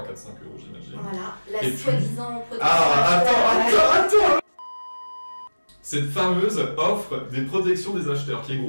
4-5 €, j'imagine. Voilà, la soi-disant protection. Ah, attends! Cette fameuse offre des protections des acheteurs, qui est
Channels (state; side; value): inverted; both; correlation -1.00